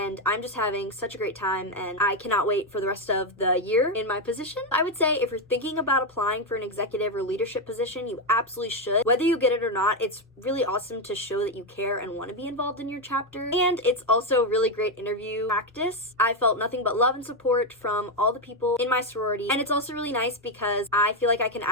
I'm just having such a great time, and I cannot wait for the rest of the year in my position. I would say if you're thinking about applying for an executive or leadership position, you absolutely should. Whether you get it or not, it's really awesome to show that you care and want to be involved in your chapter. And it's also really great interview practice. I felt nothing but love and support from all the people in my sorority. And it's also really nice because I feel like I can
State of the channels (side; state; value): both; normal; correlation 0.06